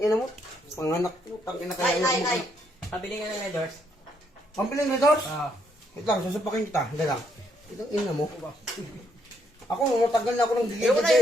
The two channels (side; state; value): both; normal; correlation 0.74